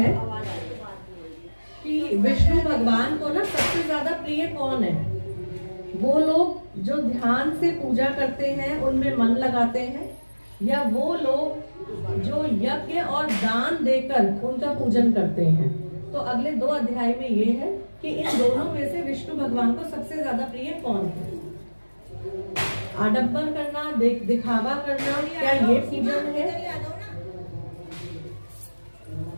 कि विष्णु भगवान को ना सबसे ज्यादा प्रिय कौन है? वो लोग जो ध्यान से पूजा करते हैं, उनमें मन लगाते हैं, या वो लोग जो यज्ञ और दान देकर उनका पूजन करते हैं। तो अगले 2 अध्याय में ये है कि इन दोनों में से विष्णु भगवान को सबसे ज्यादा प्रिय कौन है? आडंबर करना, दिखावा करना, क्या ये पूजन है?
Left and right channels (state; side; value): inverted; both; correlation -1.00